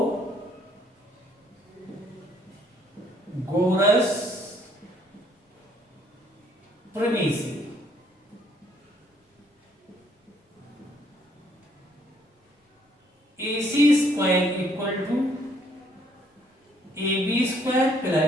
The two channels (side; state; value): both; normal; correlation 0.66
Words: premise. AC square equal to AB square